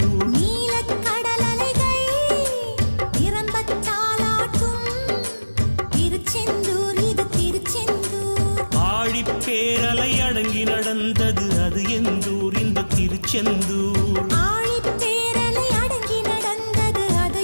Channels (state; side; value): inverted; both; correlation -1.00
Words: நீலக்கடல் அலைகள் நிரம்பத்தாலாட்டும் திருச்செந்தூர் இது திருச்செந்தூர். ஆழிப்பேரலை அடங்கி நடந்தது அது எந்தூர் இந்த திருச்செந்தூர். ஆழிப்பேரலை அடங்கி நடந்தது அது